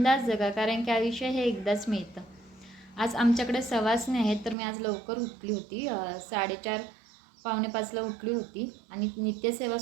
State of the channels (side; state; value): left; drops out; at 4.5 s